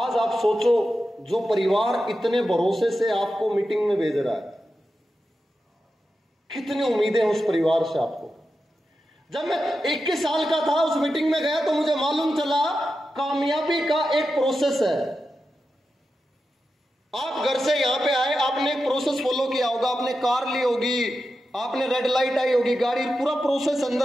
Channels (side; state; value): both; normal; correlation 0.90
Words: आप सोचो, जो परिवार इतने भरोसे से आपको मीटिंग में भेज रहा है, कितनी उम्मीदें उस परिवार से आपको। जब मैं 21 साल का था, उस मीटिंग में गया तो मुझे मालूम चला कामयाबी का एक प्रोसेस है। आप घर से यहां पे आए, आपने एक प्रोसेस फॉलो किया होगा। आपने कार ली होगी, आपने रेड लाइट आई होगी, गाड़ी, पूरा प्रोसेस,